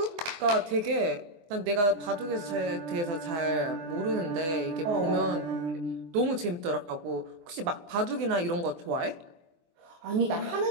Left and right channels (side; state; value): left; late; 24 ms